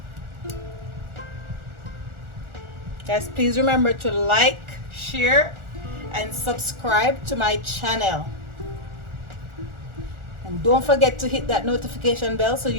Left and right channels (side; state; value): left; late; 1.4 ms